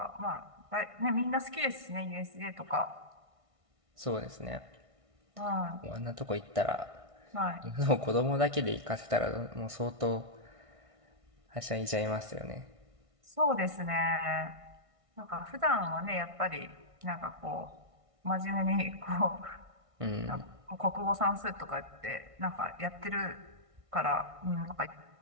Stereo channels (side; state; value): left; late; 1.6 ms